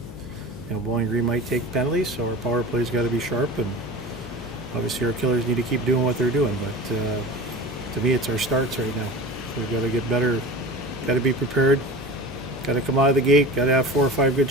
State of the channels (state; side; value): noise; left; hum, 14 dB below the sound